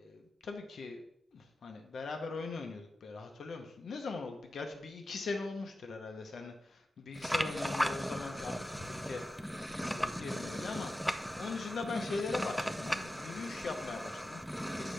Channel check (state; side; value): normal; both; correlation 0.92